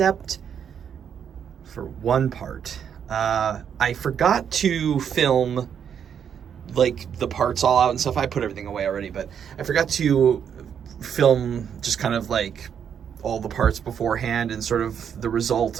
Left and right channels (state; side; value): quieter; left; 8.1 dB